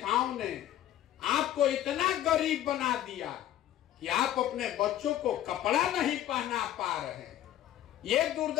ने आपको इतना गरीब बना दिया कि आप अपने बच्चों को कपड़ा नहीं पहना पा रहे, ये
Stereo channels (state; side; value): quieter; right; 12.4 dB